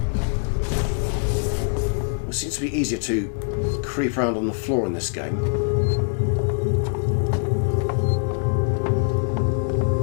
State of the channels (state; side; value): silent; right; 63 dB below the other